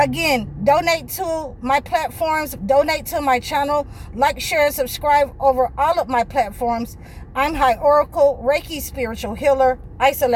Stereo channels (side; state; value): both; identical; correlation 1.00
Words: donate to my platforms, donate to my channel, like, share, and subscribe over all of my platforms. I'm High Oracle, Reiki Spiritual Healer.